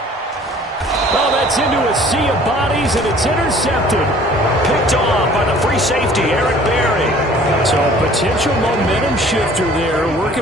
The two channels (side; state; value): both; normal; correlation 0.52